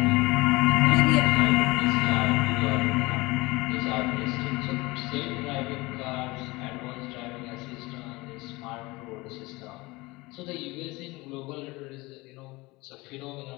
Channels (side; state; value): right; quieter; 22.5 dB